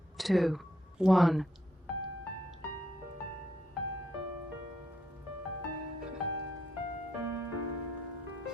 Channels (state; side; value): normal; both; correlation 0.76